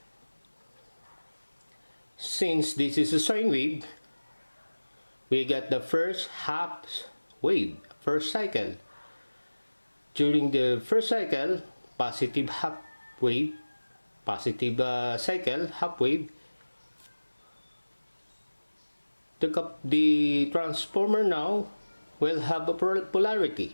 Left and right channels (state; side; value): inverted; both; correlation -1.00